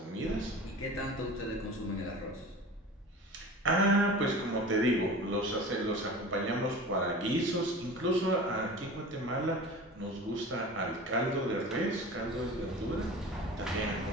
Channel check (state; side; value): normal; both; correlation 0.36